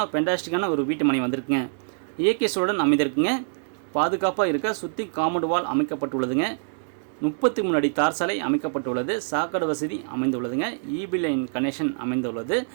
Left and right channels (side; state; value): left; silent; digital silence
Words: பெண்டாஸ்டிக்கான ஒரு வீட்டு மனை வந்திருக்குங்க. இயற்கை சூழலுடன் அமைந்திருக்குங்க. பாதுகாப்பாக இருக்க சுற்றி காம்பவுண்ட் வால் அமைக்கப்பட்டுள்ளதுங்க. 33 அடி தார் சாலை அமைக்கப்பட்டுள்ளது. சாக்கடை வசதி அமைந்துள்ளதுங்க. ஈபி லைன் கனெக்ஷன் அமைந்துள்ளது.